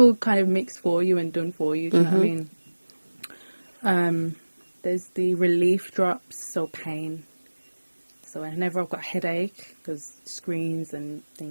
kind of mixed for you and done for you. Do you know what I mean? There's the relief drops, so pain. So whenever I've got headache, because screens and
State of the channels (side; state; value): both; inverted; correlation -1.00